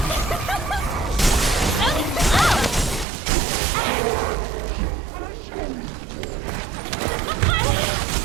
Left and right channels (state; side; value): drops out; left; at 3.1 s